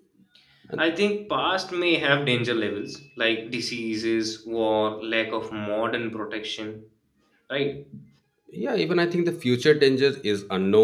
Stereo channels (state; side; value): identical; both; correlation 1.00